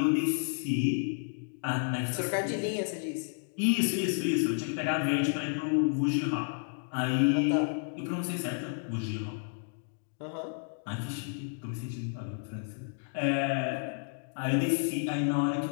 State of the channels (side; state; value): right; silent; digital silence